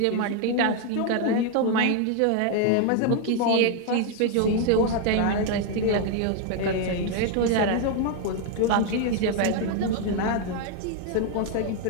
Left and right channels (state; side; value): different; both; correlation 0.01